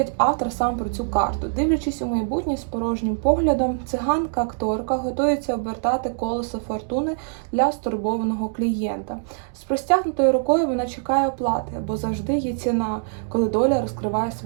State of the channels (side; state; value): left; silent; digital silence